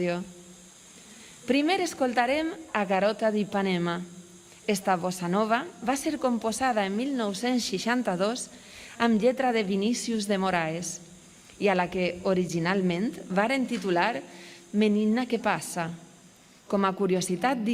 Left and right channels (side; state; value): both; identical; correlation 1.00